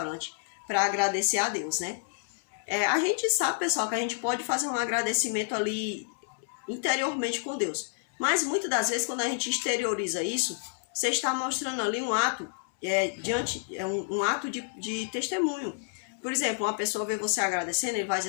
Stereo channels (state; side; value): silent; right; 58 dB below the other